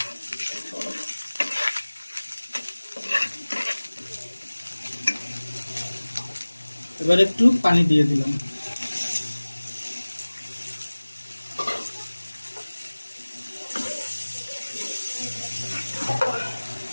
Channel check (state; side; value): inverted; both; correlation -1.00